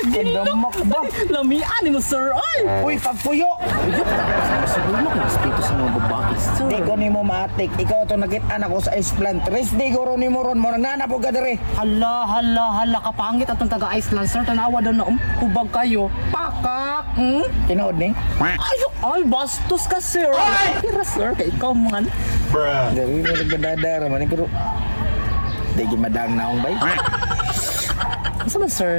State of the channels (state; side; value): inverted; both; correlation -1.00